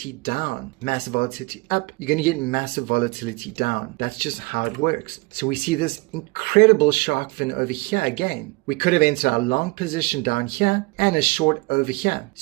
down. Massive volatility up, you're going to get massive volatility down. That's just how it works. So we see this incredible shark fin over here again. We could have entered our long position down here and a short over here. As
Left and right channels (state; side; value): quieter; left; 25.4 dB